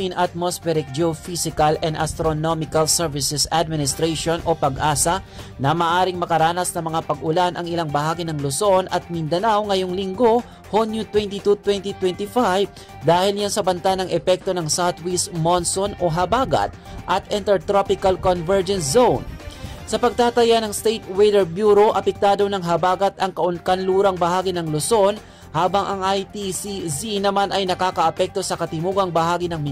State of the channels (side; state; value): both; identical; correlation 1.00